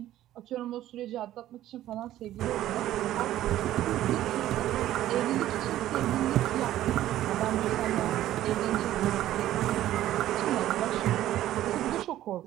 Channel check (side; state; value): left; quieter; 13.5 dB